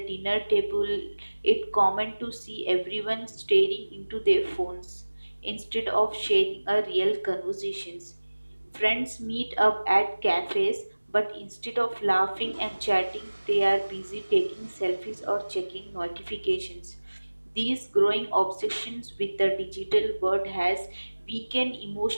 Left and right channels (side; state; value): both; inverted; correlation -1.00